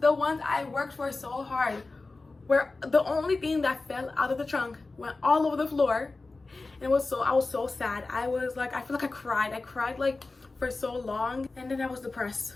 the ones I worked for so hard, were the only thing that fell out of the trunk, went all over the floor. And I was so sad. I was like, I feel like I cried like for so long, and then I was depressed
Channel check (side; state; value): right; quieter; 3.5 dB